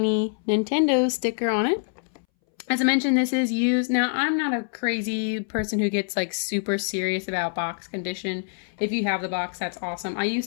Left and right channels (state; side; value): silent; right; 61 dB below the other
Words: Nintendo sticker on it. As I mentioned, this is used. Now, I'm not a crazy person who gets like super serious about box condition. If you have the box, that's awesome. I used